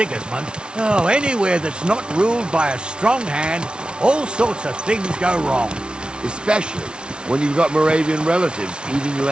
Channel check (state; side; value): late; left; 0.056 ms